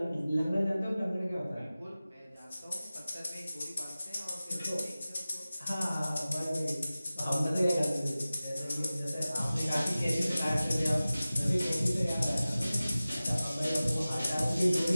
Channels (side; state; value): both; inverted; correlation -0.97